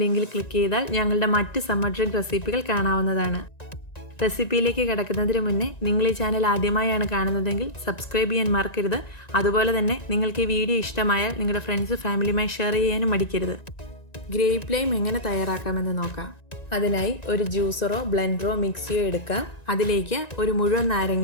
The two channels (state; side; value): late; right; 1.9 ms